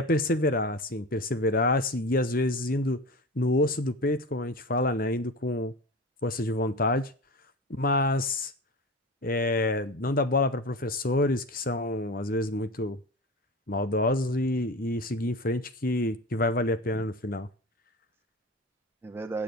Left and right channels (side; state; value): both; normal; correlation 0.29